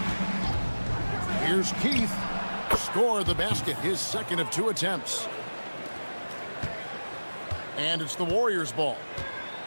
Here's Keith. Score the basket, his second of 2 attempts. And it's the Warriors' ball.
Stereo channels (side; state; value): both; inverted; correlation -1.00